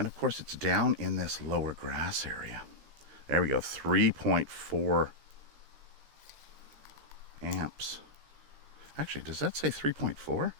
of course it's down in this lower grass area. There we go, 3.4 amps. Actually, does that say 3.4?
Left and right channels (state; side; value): late; left; 14 ms